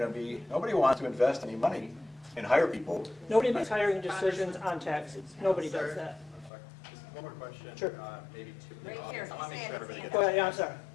be. Nobody wants to invest any money and hire people. Nobody makes hiring decisions on taxes. Nobody does that. Just one more question. Sure. Maybe two. Right here, I want to make sure everybody gets. Go ahead, yeah, I'm sorry.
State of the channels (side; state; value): right; drops out; at 6.5 s